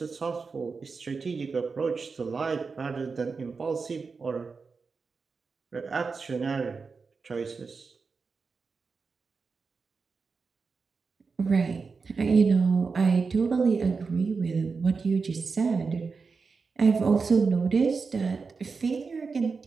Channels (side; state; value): left; quieter; 4.8 dB